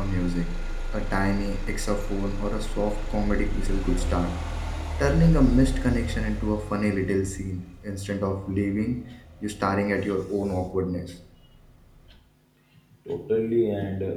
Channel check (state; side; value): identical; both; correlation 1.00